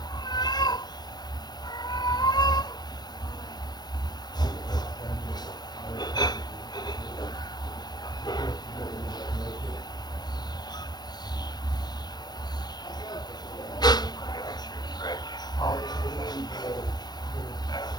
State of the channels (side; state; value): right; late; 0.20 ms